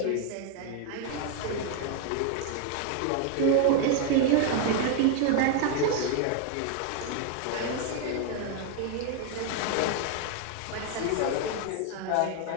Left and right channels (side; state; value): both; different; correlation 0.01